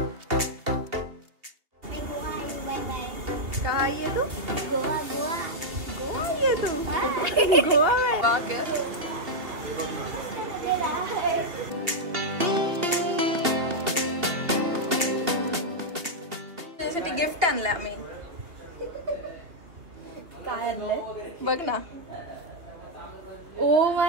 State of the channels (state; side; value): late; left; 2.8 ms